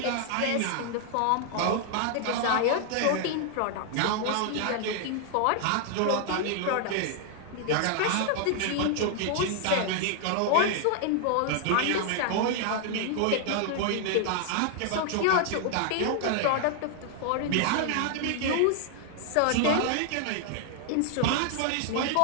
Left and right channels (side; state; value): both; different; correlation 0.00